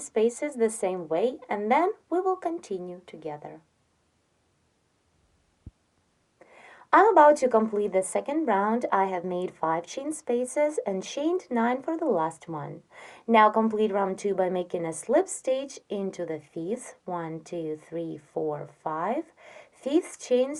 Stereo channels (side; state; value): both; identical; correlation 1.00